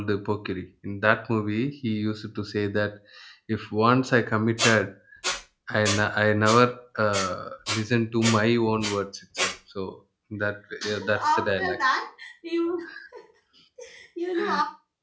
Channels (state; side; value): identical; both; correlation 1.00